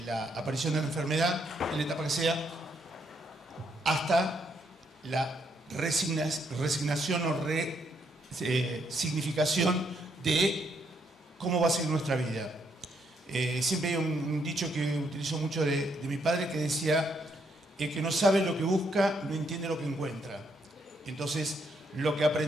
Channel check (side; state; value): both; normal; correlation 0.74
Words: la aparición de la enfermedad, en la etapa que sea, hasta la resignación o significación de cómo va a ser nuestra vida. Siempre hay un dicho que utilizo mucho de mi padre que decía: el que no sabe lo que busca no entiende lo que encuentra. Entonces, lo que